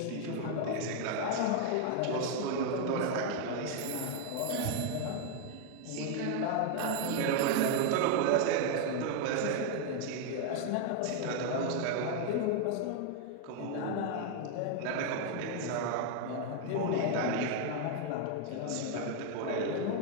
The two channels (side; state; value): both; different; correlation 0.00